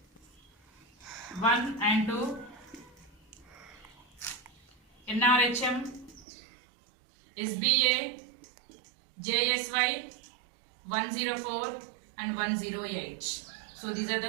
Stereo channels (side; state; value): left; drops out; at 6.2 s